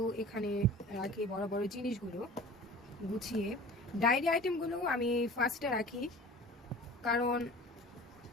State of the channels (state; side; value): normal; both; correlation 0.41